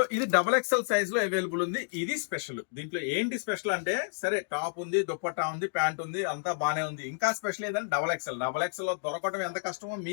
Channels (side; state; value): right; silent; digital silence